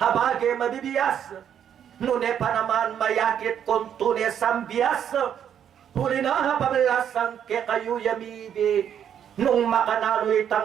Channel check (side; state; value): left; quieter; 9.1 dB